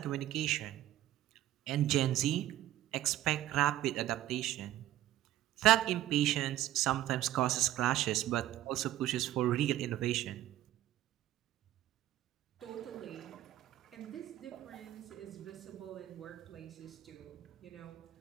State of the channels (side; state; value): left; quieter; 13.7 dB